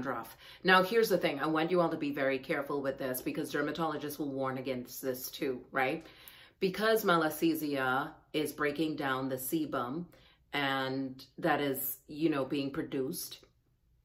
Now, here's the thing. I want you all to be very careful with this because dermatologists will warn against this too, right? Because Malassezia is breaking down the sebum and that is, you know, being produced,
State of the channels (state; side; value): identical; both; correlation 1.00